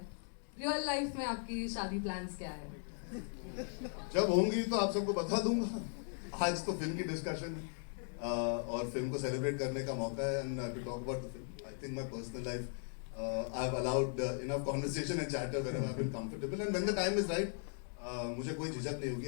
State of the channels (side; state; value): right; silent; 52 dB below the other